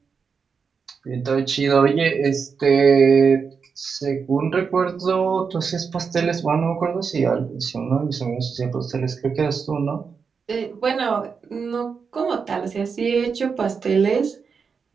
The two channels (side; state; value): left; quieter; 5.7 dB